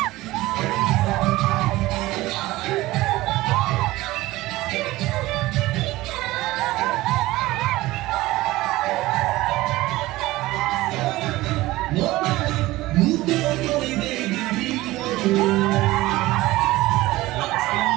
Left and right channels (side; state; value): left; quieter; 18.3 dB